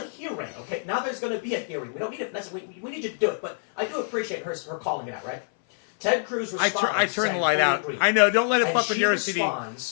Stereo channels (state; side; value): silent; right; 58 dB below the other